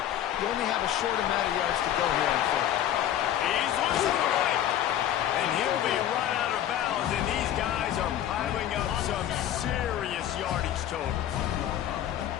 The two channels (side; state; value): right; quieter; 11.3 dB